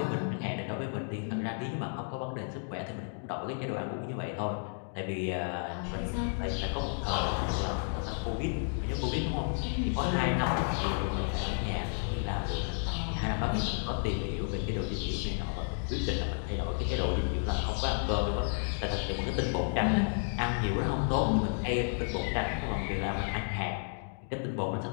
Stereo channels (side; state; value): right; silent; 56 dB below the other